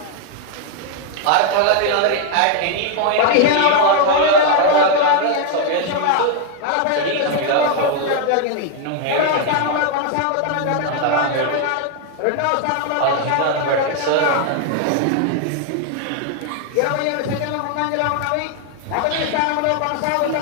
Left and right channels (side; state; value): both; different; correlation 0.00